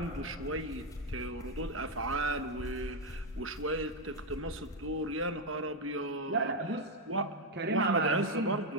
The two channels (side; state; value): both; normal; correlation 0.04